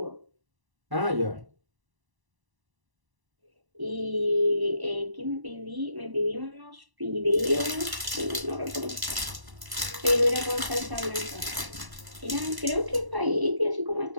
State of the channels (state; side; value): late; left; 1.0 ms